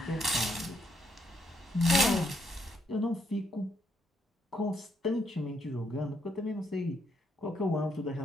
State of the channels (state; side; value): normal; both; correlation 0.74